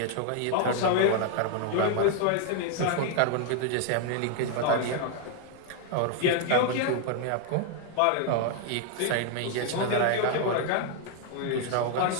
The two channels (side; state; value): both; different; correlation 0.00